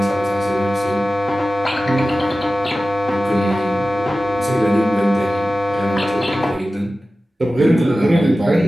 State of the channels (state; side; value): normal; both; correlation 0.95